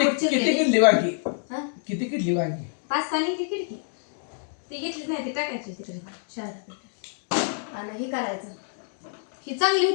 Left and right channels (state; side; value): silent; right; digital silence